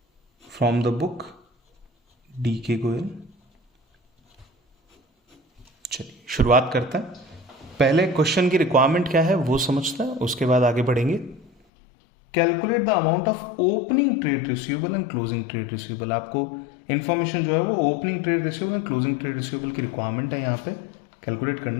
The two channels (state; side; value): drops out; right; at 11.5 s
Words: From the book D.K. Goyal. चलिए शुरुआत करते हैं। पहले question की रिक्वायरमेंट क्या है वो समझते हैं, उसके बाद आगे बढ़ेंगे। Calculate the amount of opening trade receivable and closing trade receivable. आपको इन्फॉर्मेशन जो है वो opening trade receivable and closing trade receivable की रिक्वायरमेंट है, यहाँ पे कैलकुलेट